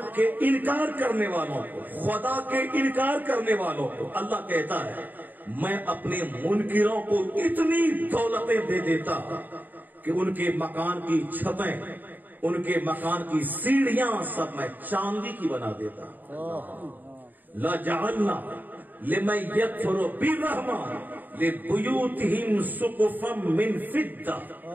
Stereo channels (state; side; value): late; left; 0.087 ms